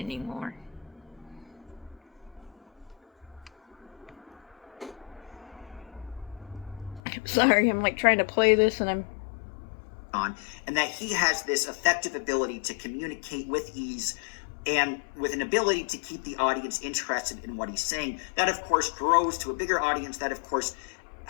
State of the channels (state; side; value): drops out; right; at 7.0 s